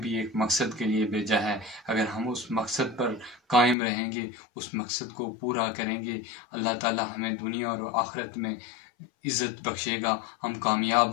भी एक मकसद के लिए भेजा है। अगर हम उस मकसद पर कायम रहेंगे, उस मकसद को पूरा करेंगे, अल्लाह ताला हमें दुनिया और आखिरत में इज़्ज़त बख्शेगा। हम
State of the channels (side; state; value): right; drops out; at 3.8 s